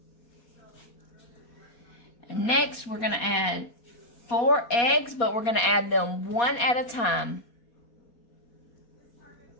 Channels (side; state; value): right; late; 4.2 ms